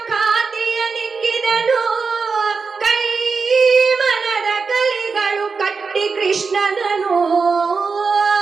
ಖಾತಿಯ ನಿಕ್ಕಿದನು ಕೈ ಮನದ ಕಲಿಗಳು ಕಟ್ಟಿ ಕೃಷ್ಣನನು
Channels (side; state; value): left; quieter; 4.9 dB